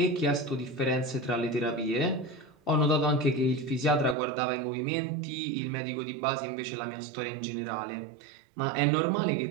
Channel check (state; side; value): drops out; left; at 4.2 s